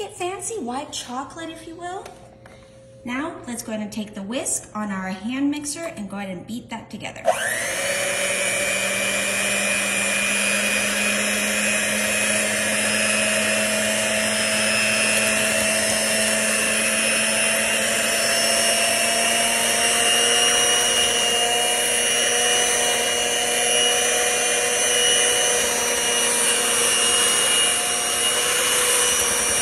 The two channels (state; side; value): identical; both; correlation 1.00